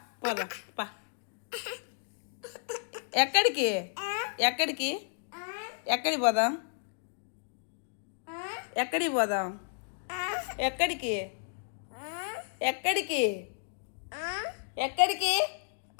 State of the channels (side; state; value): right; silent; digital silence